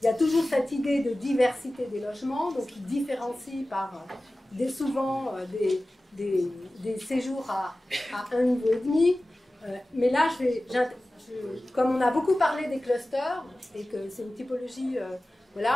Il y a toujours cette idée de diversité des logements, donc ils différencient par souvent des séjours à 1,5 niveau. Mais là, comme on a beaucoup parlé des clusters et que c'est une typologie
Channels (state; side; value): normal; both; correlation 0.96